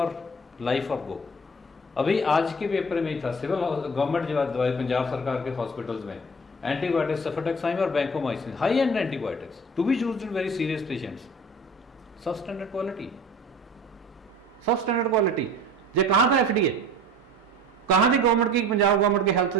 life off go. अभी आज के पेपर में ही था, सिविल गवर्नमेंट जो दवाई पंजाब सरकार के हॉस्पिटल्स में एंटीबायोटिक्स, सफेटेक्साइम और vancomycin, high end antibiotics to be used in very serious patients, substandard quality, substandard quality. ये कहाँ था एफडीए? कहाँ थी गवर्नमेंट की, पंजाब गवर्नमेंट की हेल्थ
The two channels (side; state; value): both; normal; correlation 0.43